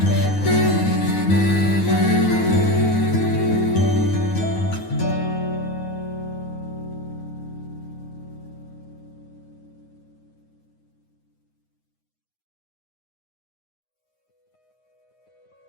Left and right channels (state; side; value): late; right; 9.6 ms